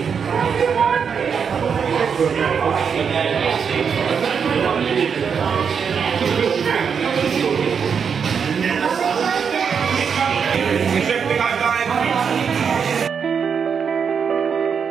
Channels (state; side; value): quieter; left; 6.6 dB